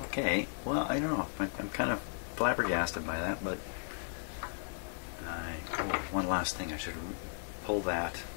Okay, well, I don't know. I'm kind of flabbergasted by that, but oh, one last thing. I should pull that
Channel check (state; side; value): silent; right; digital silence